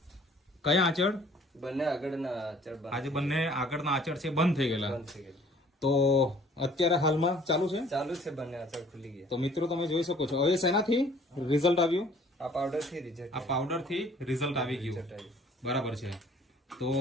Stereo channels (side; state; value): both; normal; correlation 0.55